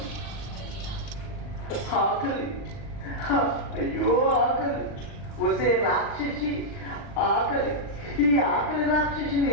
ఆకలి, అయ్యో ఆకలి, వసే రాక్షసి ఆకలి. ఈ ఆకలి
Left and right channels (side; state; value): right; late; 39 ms